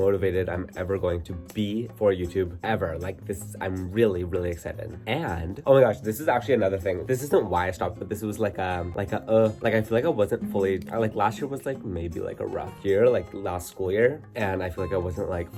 I'm ever going to be for YouTube ever. Like this, I'm really, really excited. And oh my gosh, this is actually another thing. This isn't why I stopped, but this was like I feel like I wasn't fully, like last year was like maybe like a rough year, like last school year. And I feel like I wasn't like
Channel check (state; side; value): identical; both; correlation 1.00